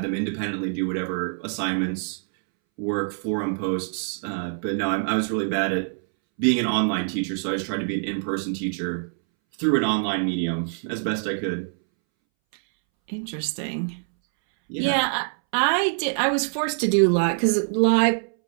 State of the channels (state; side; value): silent; left; 62 dB below the other